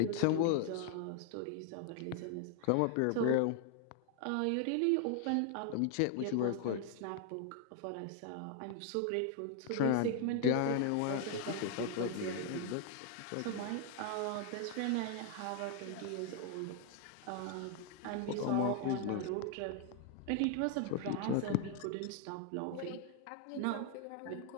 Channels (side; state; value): both; different; correlation 0.00